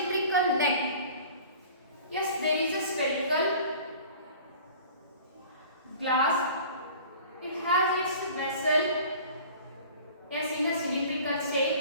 neck. Yes, there is a spherical glass. It has its vessel, yes, in a cylindrical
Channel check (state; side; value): inverted; both; correlation -0.44